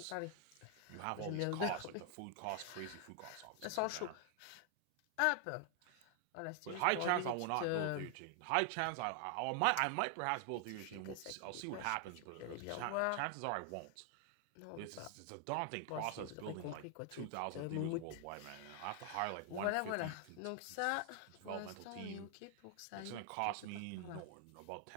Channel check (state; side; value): different; both; correlation 0.00